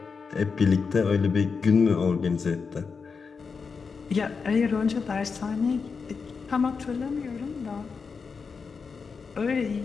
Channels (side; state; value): right; quieter; 5.3 dB